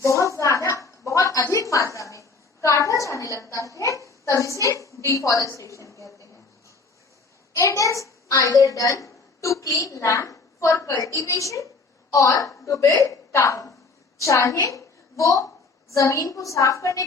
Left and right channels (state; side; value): quieter; right; 4.1 dB